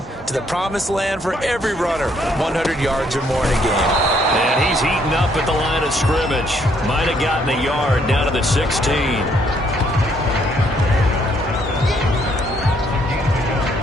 to the promised land for every runner. 100 yards or more in a game. And he's heating up at the line of scrimmage. Might have gotten a yard down to the 16.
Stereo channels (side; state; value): both; normal; correlation 0.69